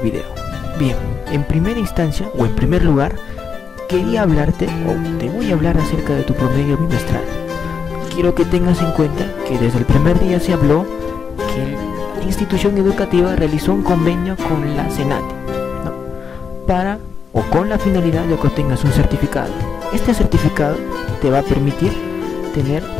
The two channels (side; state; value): right; quieter; 6.2 dB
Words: video. Bien, en primera instancia o en primer lugar, quería hablarte o te voy a hablar acerca de tu promedio bimestral. Quiero que tengas en cuenta que desde el primer día se habló que la institución educativa realizó un convenio con la SENATE, ¿no? Para o con la finalidad de que obtengas un certificado. Este certificado te va a permitir tener